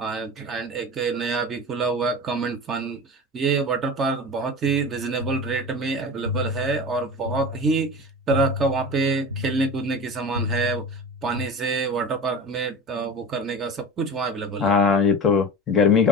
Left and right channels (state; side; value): normal; both; correlation 0.32